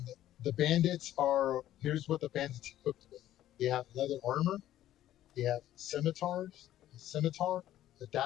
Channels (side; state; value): right; quieter; 13.0 dB